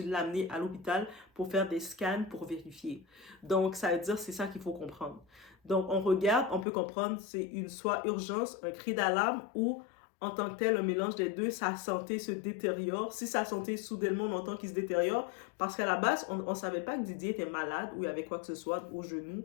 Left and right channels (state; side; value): drops out; right; at 6.7 s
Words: l'amener à l'hôpital pour faire des scans pour vérifier. Donc, ça veut dire que c'est ça qu'il faut comprendre. Donc, on regarde, on peut comprendre, c'est soit urgence, un cri d'alarme ou en tant que tel, un mélange des deux, sa santé se détériore. Si sa santé, soudainement, on entend qu'il se détériore, parce qu'à la base, on ne savait pas que Didier était malade ou il y avait quoi que ce soit au genou.